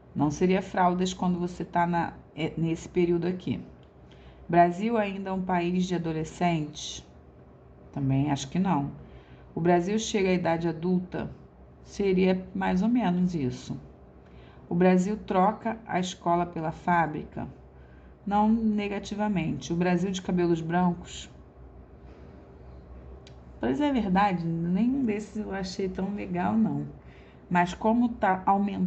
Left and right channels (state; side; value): identical; both; correlation 1.00